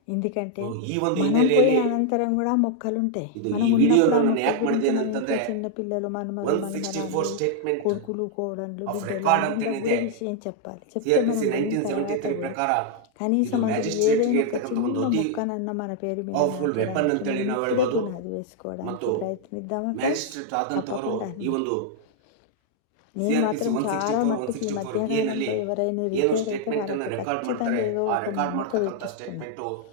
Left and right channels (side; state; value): both; different; correlation 0.00